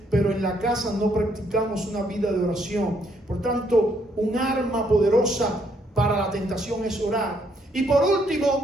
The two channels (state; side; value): normal; both; correlation 0.71